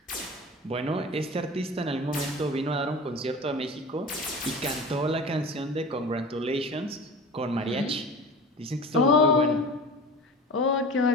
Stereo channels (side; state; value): both; normal; correlation 0.36